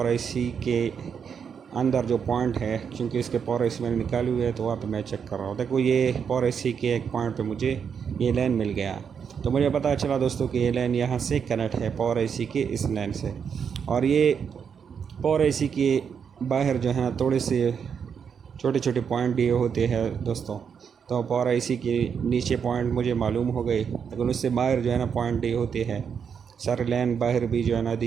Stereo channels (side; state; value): left; quieter; 7.0 dB